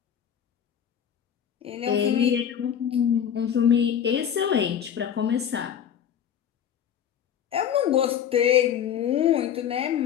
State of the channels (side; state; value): right; quieter; 9.0 dB